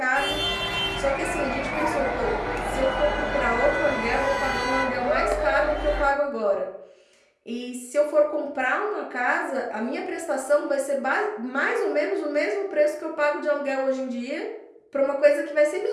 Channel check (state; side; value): identical; both; correlation 1.00